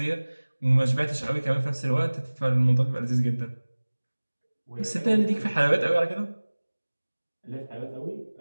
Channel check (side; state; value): both; inverted; correlation -1.00